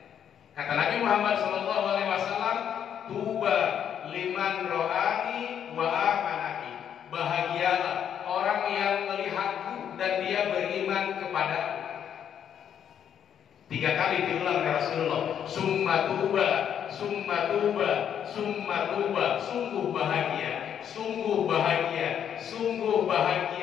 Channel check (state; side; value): quieter; right; 8.9 dB